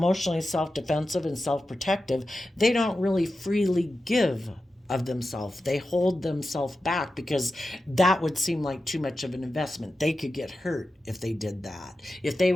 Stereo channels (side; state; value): both; normal; correlation 0.92